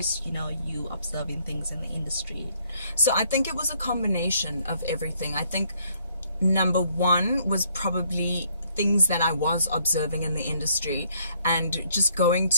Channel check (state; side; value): inverted; both; correlation -0.67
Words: you observing things in the industry? So I think it was a combination of everything. I think number one was probably things that I was observing in the industry, and just going